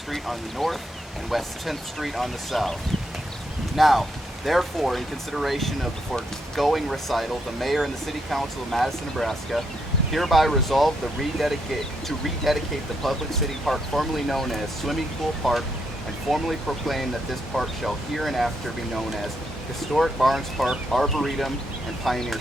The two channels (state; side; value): normal; both; correlation 0.78